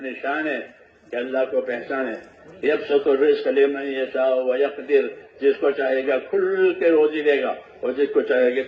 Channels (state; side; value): identical; both; correlation 1.00